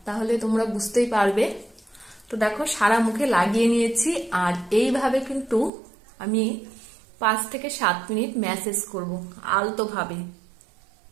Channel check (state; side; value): drops out; left; at 5.7 s